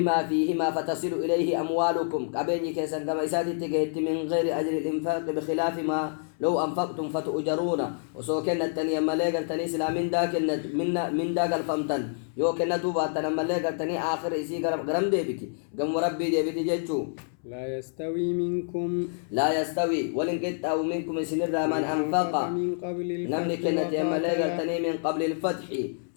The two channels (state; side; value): silent; right; 60 dB below the other